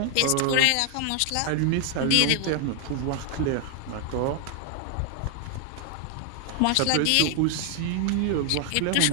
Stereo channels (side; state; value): both; different; correlation 0.00